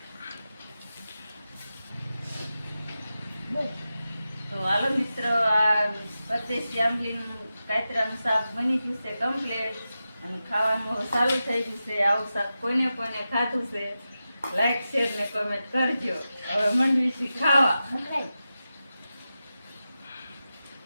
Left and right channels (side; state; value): both; inverted; correlation -0.92